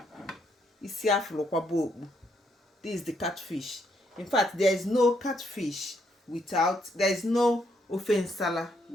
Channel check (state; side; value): normal; both; correlation 0.74